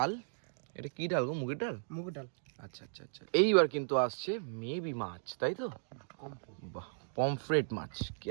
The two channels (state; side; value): silent; left; digital silence